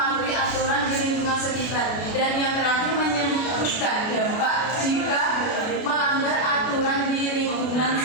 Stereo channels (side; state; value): right; late; 32 ms